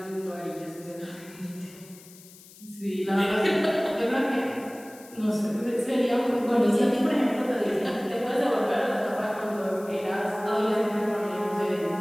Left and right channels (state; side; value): noise; left; hiss, 21 dB below the sound